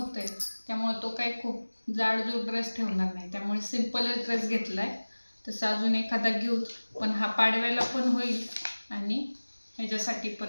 आहे, त्यामुळे तो काही खूप जाडजूड ड्रेस ठेवणार नाही, त्यामुळे सिम्पलच ड्रेस घेतला आहे. तसं अजून एखादा घेऊ, पण हा पाडव्याला पण होईल आणि ह्याच्यासाठी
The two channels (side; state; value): both; inverted; correlation -1.00